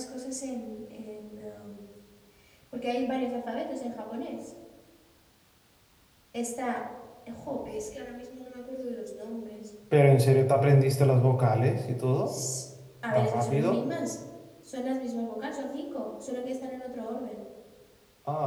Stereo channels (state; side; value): identical; both; correlation 1.00